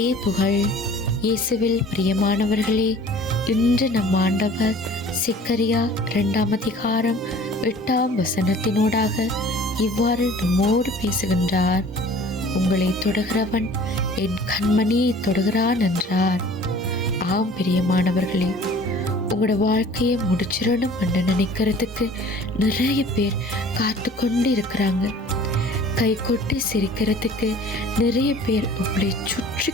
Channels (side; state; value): both; normal; correlation 0.48